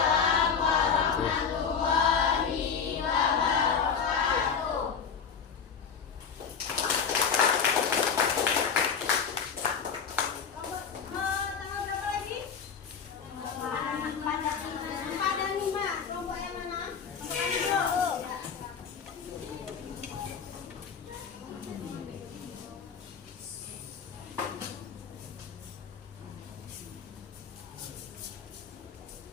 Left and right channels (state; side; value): quieter; right; 6.4 dB